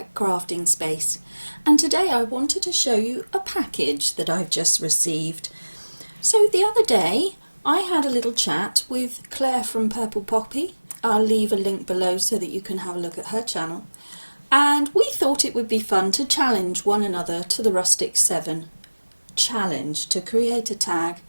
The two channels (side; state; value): both; inverted; correlation -1.00